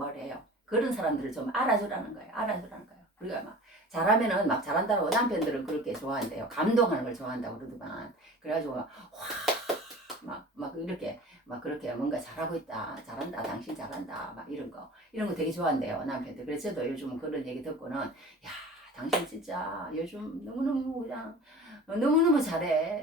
해요. 그런 사람들을 좀 알아주라는 거예요. 알아주라는 거예요. 우리가 막 잘하면은 막 잘한다고 남편들은 그렇게 좋아한대요. 감동하는 걸 좋아한다고 그러더만. 그래가지고 막 이렇게 막 그렇게 뭔가 잘하고 있다, 잘한다, 당신 잘한다, 막 이런 거 되게 좋아한대요 남편들. 그래서 저도 요즘 그런 얘기 듣고는 야, 당신 진짜 요즘 너무너무 그냥 너무너무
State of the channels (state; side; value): normal; both; correlation 0.40